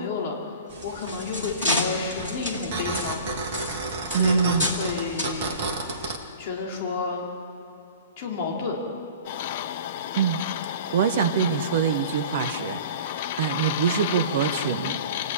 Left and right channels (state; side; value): inverted; both; correlation -0.40